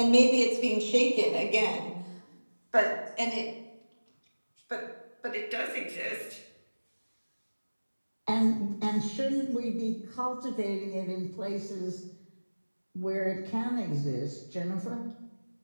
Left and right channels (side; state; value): both; inverted; correlation -1.00